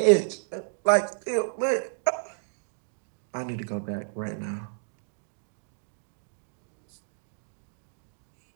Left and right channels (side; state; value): left; silent; digital silence